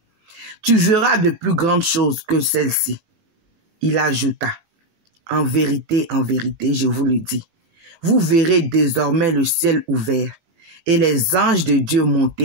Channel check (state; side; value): late; left; 19 ms